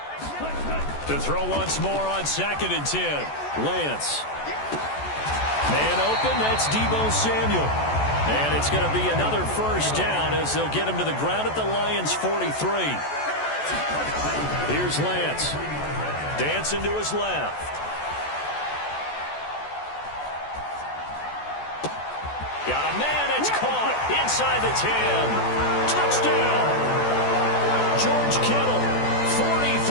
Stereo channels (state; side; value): late; right; 14 ms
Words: To throw once more on 2nd and 10. Lance. Man open, that's Deebo Samuel. And it's going to be another first down as they'll get him to the ground at the Lions' 43. Here's Lance. Dancing to his left. Got a man, it's caught inside the 10. Touchdown. George Kittle,